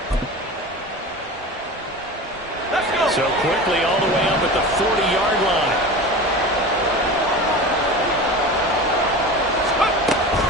So quickly all the way up at the 40-yard line.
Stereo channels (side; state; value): both; normal; correlation 0.32